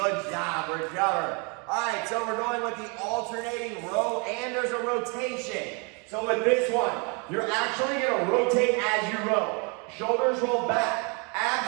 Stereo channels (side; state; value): left; quieter; 33.4 dB